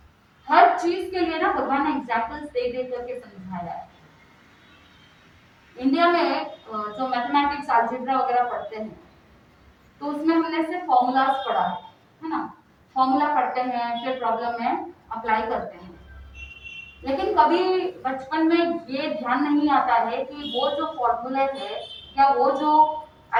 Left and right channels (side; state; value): both; identical; correlation 1.00